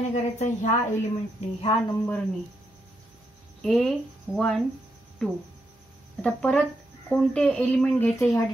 करायचं ह्या एलिमेंटनी ह्या नंबरनी A12. आता परत कोणते एलिमेंट घ्यायचे ह्या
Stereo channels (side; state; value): both; normal; correlation 0.81